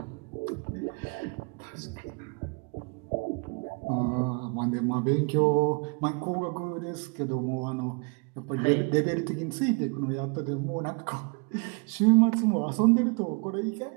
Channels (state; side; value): quieter; left; 34.2 dB